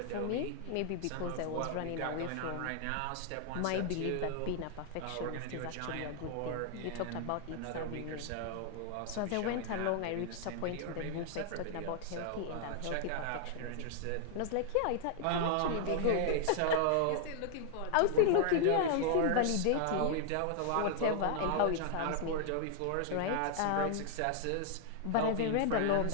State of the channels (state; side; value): different; both; correlation 0.00